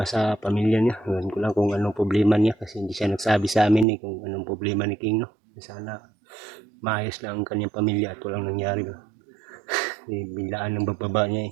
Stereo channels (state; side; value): drops out; left; at 3.9 s